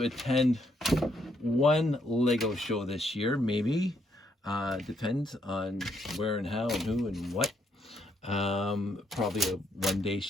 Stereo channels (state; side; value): normal; both; correlation 0.74